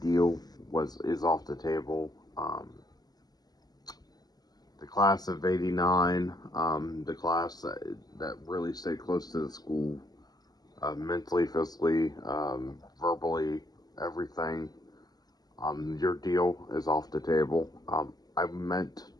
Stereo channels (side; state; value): right; late; 0.19 ms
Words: is off the table. The class of '89, the class that really stayed close to the school, mentally, physically, verbally, everything. Your deal is off the table. I meant